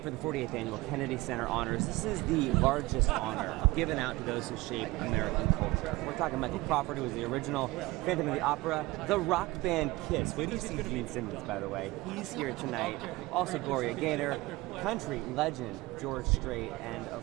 for the 48th Annual Kennedy Center Honors. This is the largest honor given out to those who shape American culture. We're talking Michael Crawford, who was the original Phantom of the Opera, the rock band Kiss. Where do you see Simmons, by the way? He's here tonight. Also Gloria Gaynor, country legend George Strait, and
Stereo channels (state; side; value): quieter; left; 20.8 dB